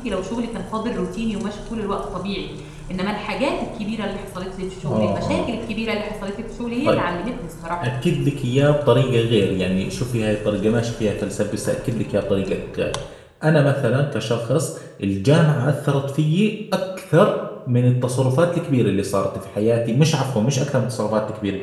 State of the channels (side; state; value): both; identical; correlation 1.00